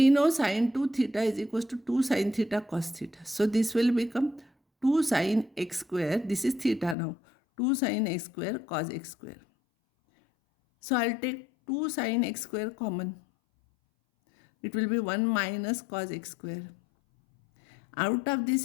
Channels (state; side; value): drops out; right; at 7.0 s